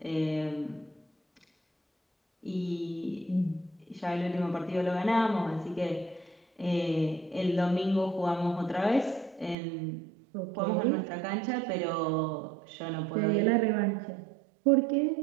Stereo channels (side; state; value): left; drops out; at 9.6 s